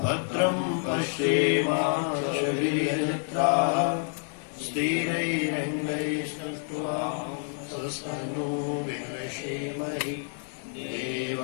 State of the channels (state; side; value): silent; right; 59 dB below the other